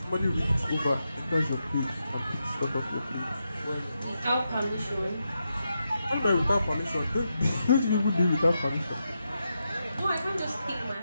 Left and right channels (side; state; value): both; inverted; correlation -0.86